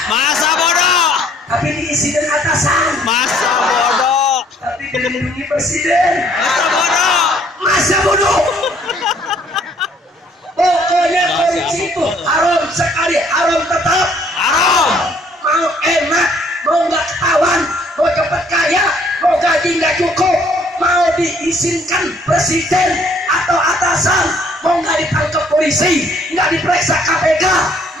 Masa bodoh. tapi diisi dengan atasan, Masa bodoh. tapi dilindungi presiden. Masa bodoh. Masa bodoh. Pokoknya korupsi itu haram sekali, haram tetap. Haram. Mau enak, mau nggak ketahuan, mau cepat kaya, mau gaji nggak cukup, mau diizinkan presiden atau atasan, mau nggak ditangkap polisi, nggak diperiksa KPK,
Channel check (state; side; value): normal; both; correlation 0.62